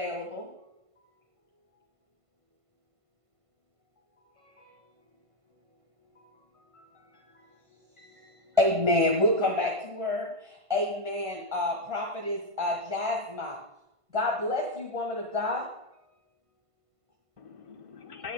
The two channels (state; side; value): late; left; 1.5 ms